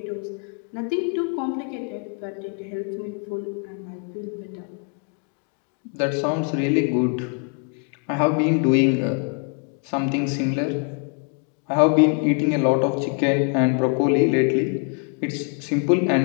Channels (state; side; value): quieter; right; 37.4 dB